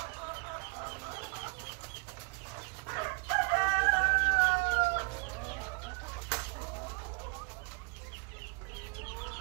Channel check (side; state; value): left; quieter; 31.5 dB